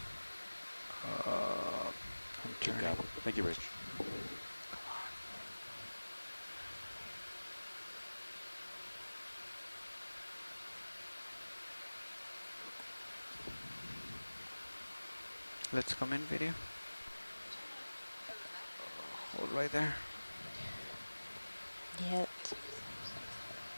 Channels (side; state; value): both; inverted; correlation -1.00